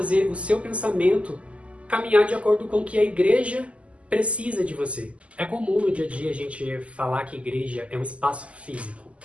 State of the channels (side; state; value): left; late; 0.061 ms